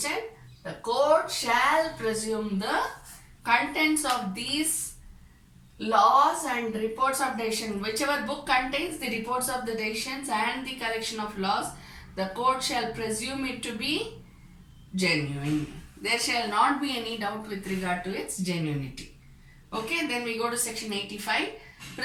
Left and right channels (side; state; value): both; identical; correlation 1.00